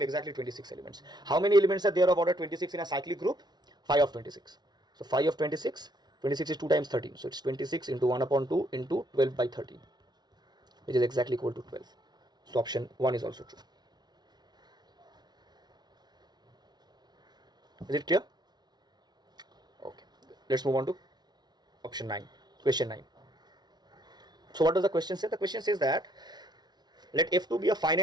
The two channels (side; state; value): left; late; 0.20 ms